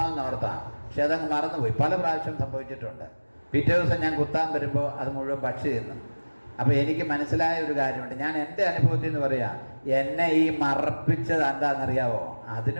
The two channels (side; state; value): both; inverted; correlation -1.00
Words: പക്ഷെ അതങ്ങ് മറന്നുപോയി. പല പ്രാവശ്യം സംഭവിച്ചിട്ടുണ്ട്. പിറ്റേ ദിവസം ഞാൻ കുത്താൻ വരുമ്പോൾ അത് മുഴുവൻ പക്ഷി തിന്നു. അപ്പോൾ എനിക്ക് മനസ്സിലായ ഒരു കാര്യമുണ്ട്. ഞാൻ എൻ്റെ അനുഭവത്തിൽ നിന്ന് പറയാം, എന്നെ ഈ മറപ്പിച്ചത് എന്താണെന്നറിയാവോ?